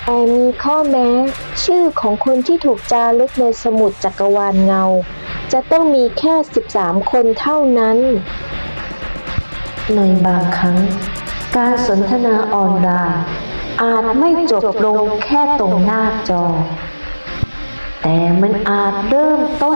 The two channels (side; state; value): both; inverted; correlation -1.00